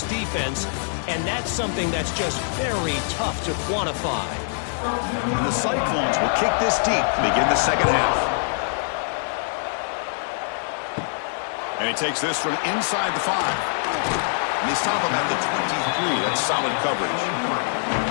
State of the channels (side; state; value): right; silent; digital silence